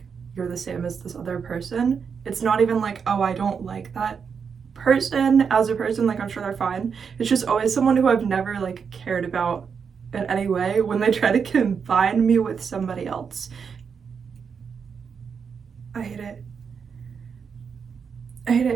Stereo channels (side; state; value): left; quieter; 6.3 dB